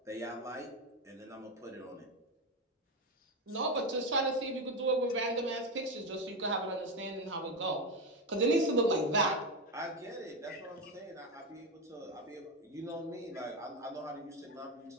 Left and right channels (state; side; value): normal; both; correlation 0.14